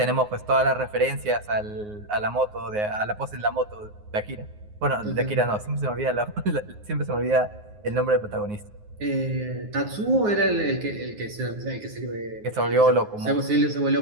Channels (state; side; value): late; left; 9.6 ms